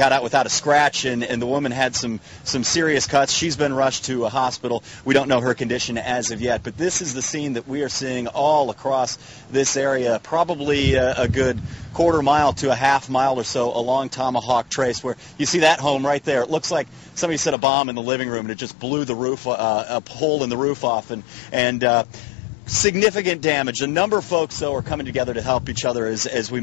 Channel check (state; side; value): drops out; right; at 17.6 s